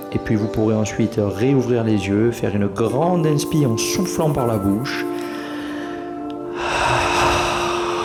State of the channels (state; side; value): identical; both; correlation 1.00